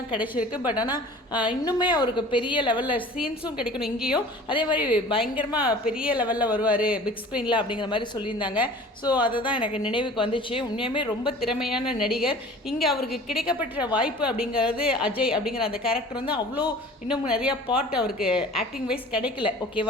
கிடைச்சிருக்கு. பட் ஆனால் இன்னுமே அவருக்கு பெரிய லெவலில் சீன்ஸும் கிடைக்கணும் இங்கேயும். அதே மாதிரி பயங்கரமாக பெரிய லெவலில் வருவார் பிக் ஸ்க்ரீனில் அப்படிங்கிற மாதிரி சொல்லியிருந்தாங்க. ஸோ அதை தான் எனக்கு நினைவுக்கு வந்துச்சு. உண்மையுமே ரொம்ப திறமையான நடிகர். இங்கே அவருக்கு கிடைக்கப்பட்ட வாய்ப்பு அப்படிங்கிறது அஜய் அப்படிங்கிற அந்த கேரக்டர் அவ்வளோ இன்னும் நிறையா பார்ட் அவருக்கு ஆக்டிங் வைஸ் கிடைக்கல.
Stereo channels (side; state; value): both; normal; correlation 0.44